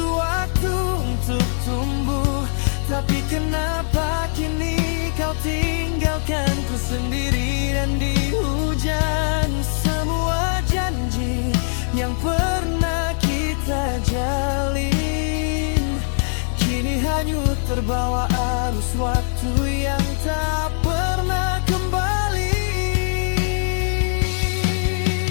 waktu untuk tumbuh. Tapi kenapa kini kau tinggalkanku sendiri dan di hujan? Semua janji yang pernah kita jalin kini hanyut terbawa arus waktu yang tak pernah kembali.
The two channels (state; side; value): silent; right; digital silence